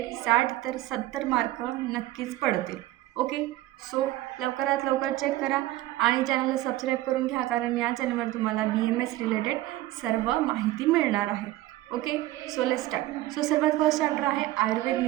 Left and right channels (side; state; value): left; quieter; 16.2 dB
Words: 60 तर 70 मार्क नक्कीच पडतील. ओके. सो लवकरात लवकर चेक करा आणि चॅनलला सबस्क्राईब करून घ्या, कारण या चॅनलवर तुम्हाला BMS रिलेटेड सर्व माहिती मिळणार आहे. Okay. So let's start. So सर्वात फर्स्ट चॅप्टर आहे आयुर्वेद